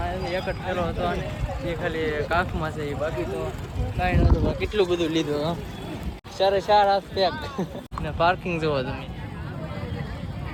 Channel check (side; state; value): both; identical; correlation 1.00